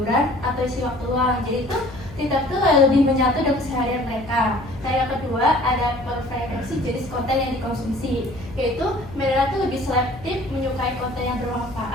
atau isi waktu luang. Jadi itu TikTok tuh lebih menyatu dengan keseharian mereka. Nah yang kedua ada preferensi jenis konten yang dikonsumsi, yaitu mereka tuh lebih selektif menyukai konten yang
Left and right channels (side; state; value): left; noise; hum, 16 dB below the sound